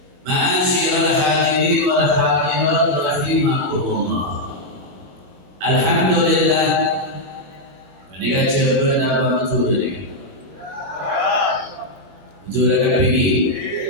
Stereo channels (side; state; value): left; late; 21 ms